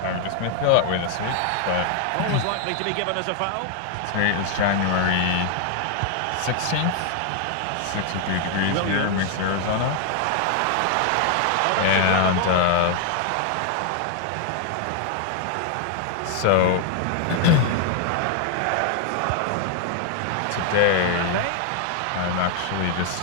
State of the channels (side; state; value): both; different; correlation 0.00